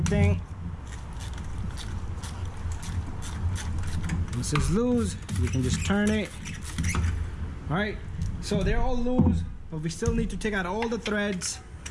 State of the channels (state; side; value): identical; both; correlation 1.00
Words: thing. Once it's loose, you can just turn it. All right, so they're all loose, but we still need to take out all the threads.